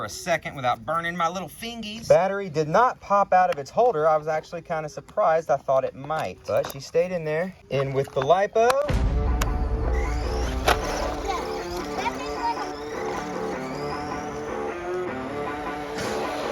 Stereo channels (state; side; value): identical; both; correlation 1.00